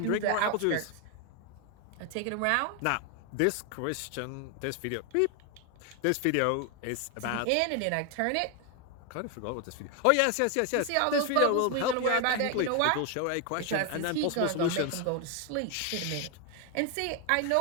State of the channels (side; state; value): both; different; correlation 0.01